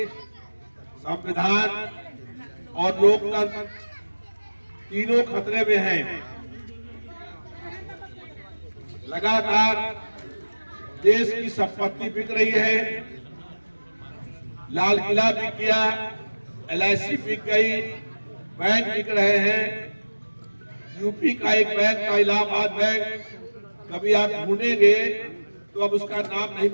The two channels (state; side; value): inverted; both; correlation -1.00